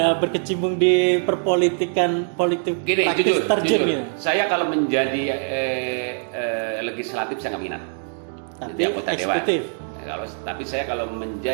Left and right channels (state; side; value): silent; left; 59 dB below the other